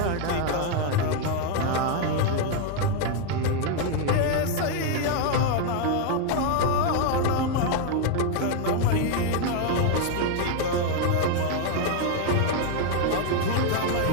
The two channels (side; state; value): both; different; correlation 0.01